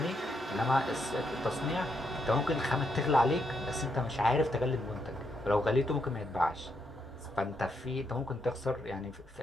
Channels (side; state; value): both; normal; correlation 0.79